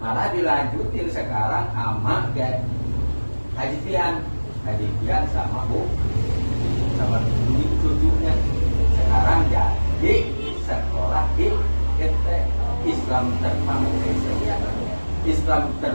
dilanjutin sekarang sama Kiai Haji Pian sama sama cucunya. Sekarang jadi sekolah di Islam Terpadu, Islam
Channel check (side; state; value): both; inverted; correlation -1.00